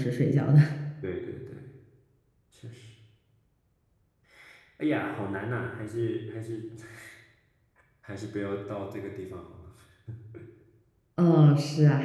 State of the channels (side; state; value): both; identical; correlation 1.00